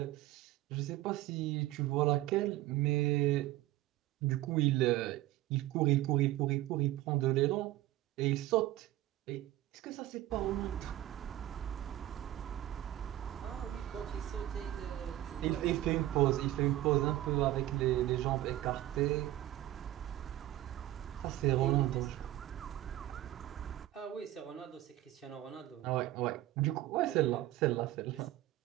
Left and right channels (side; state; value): left; quieter; 15.0 dB